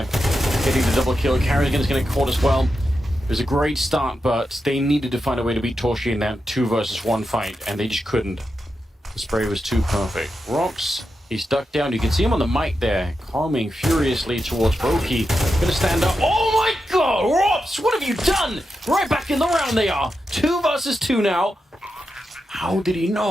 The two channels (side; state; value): both; normal; correlation 0.88